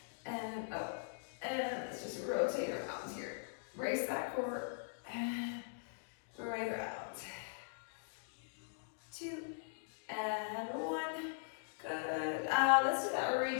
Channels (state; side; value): silent; right; digital silence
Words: and up. And let's just rotate around here. Brace that core, and right around. Two, and one. Good. Let's do that